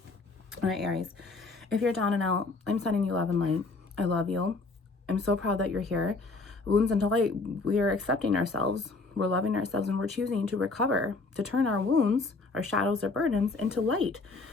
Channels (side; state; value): right; quieter; 3.7 dB